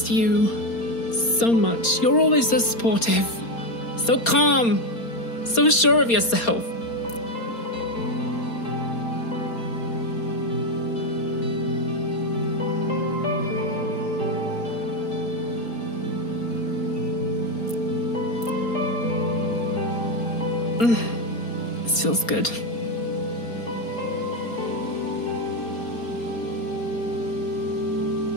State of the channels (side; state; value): right; late; 4.3 ms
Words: you so much. You're always so supportive, so calm, so sure of yourself. This feels good.